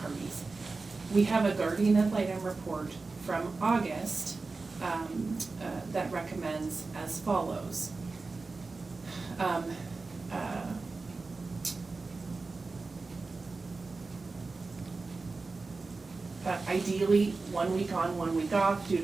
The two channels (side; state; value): left; quieter; 3.9 dB